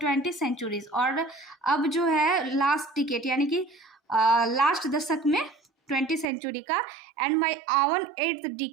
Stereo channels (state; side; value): drops out; left; at 6.2 s